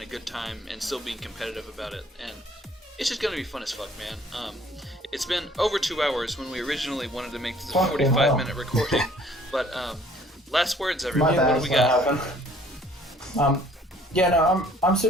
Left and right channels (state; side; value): normal; both; correlation 0.57